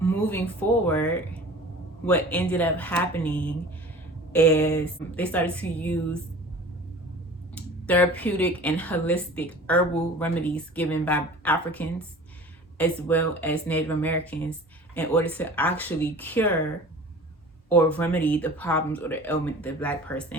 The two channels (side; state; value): both; normal; correlation 0.42